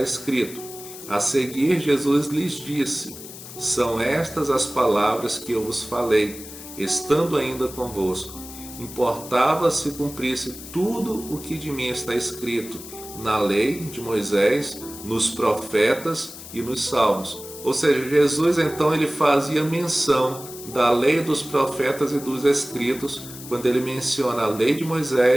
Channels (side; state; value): left; noise; hiss, 14 dB below the sound